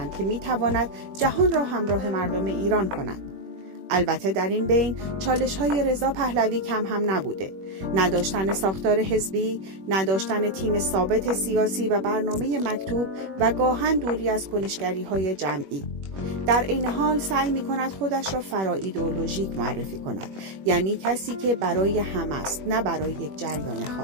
که می‌تواند جهان را همراه مردم ایران کند. البته در این بین چالش‌های رضا پهلوی کم هم نبوده. نداشتن ساختار حزبی، نداشتن تیم ثابت سیاسی و برنامه مکتوب و گاهن دوری از کنشگری‌های جمعی. در این حال سعی می‌کند خودش را فرا ایدئولوژیک معرفی کند، یعنی کسی که برای همه است، نه برای یک جریان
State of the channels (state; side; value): late; left; 21 ms